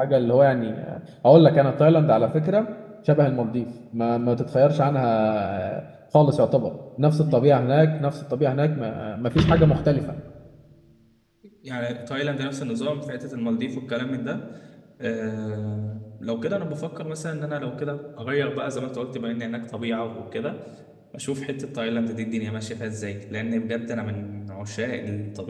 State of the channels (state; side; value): identical; both; correlation 1.00